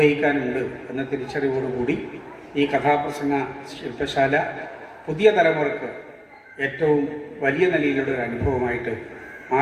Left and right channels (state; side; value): identical; both; correlation 1.00